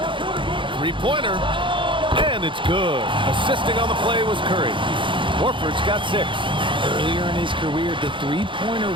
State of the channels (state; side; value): late; left; 0.24 ms